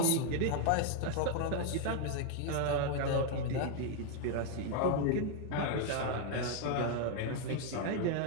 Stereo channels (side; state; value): both; different; correlation 0.00